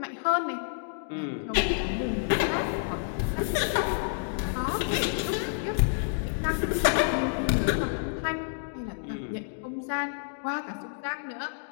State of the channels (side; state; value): right; silent; digital silence